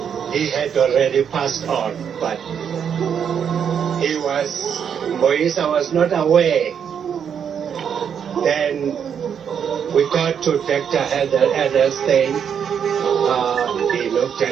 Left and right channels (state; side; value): quieter; left; 7.8 dB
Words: he had already passed on, but Moisa was not aware. Then we got to Dr. Edelstein. He looked